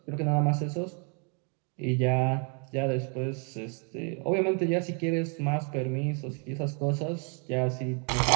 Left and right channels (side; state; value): left; quieter; 37.5 dB